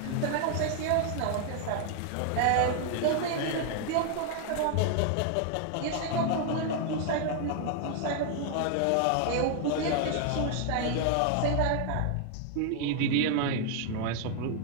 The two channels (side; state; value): both; different; correlation 0.00